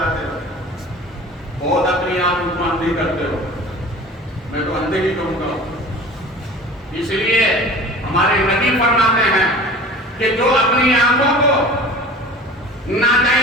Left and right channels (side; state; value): both; normal; correlation 0.41